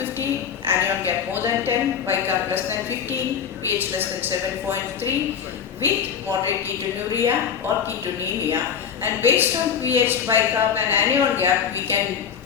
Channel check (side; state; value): right; quieter; 7.6 dB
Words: anion gap more than 10, bicarb less than 15, pH less than 7.3 with moderate ketonuria or ketonemia, and based on pH, bicarb and anion gap we can